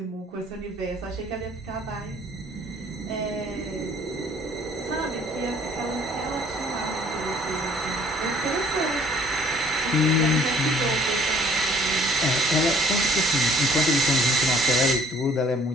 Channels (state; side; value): normal; both; correlation 0.58